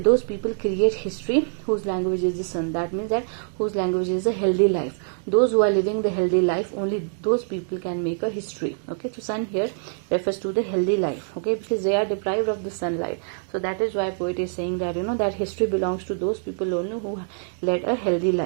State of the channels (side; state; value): left; silent; digital silence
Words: create history whose language is the sun. That means that whose language is a healthy life. Those who are living the healthy life, only those people can make a history. Okay, so sun here refers to the healthy life. Okay, because they are deprived of the sunlight. So that is why poet is saying that that history belongs to those people only who led a healthy